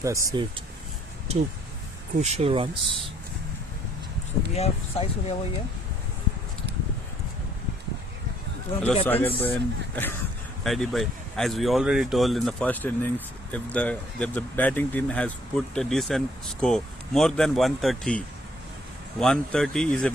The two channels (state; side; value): normal; both; correlation 0.64